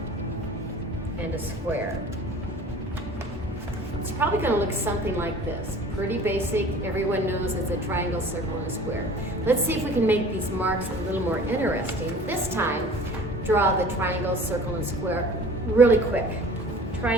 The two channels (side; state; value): both; normal; correlation 0.45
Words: and a square. It's probably going to look something like this. Pretty basic. Everyone knows it's a triangle, circle, and a square. Let's see if we can make these marks a little more interesting. This time, draw the triangle, circle, and square really quick.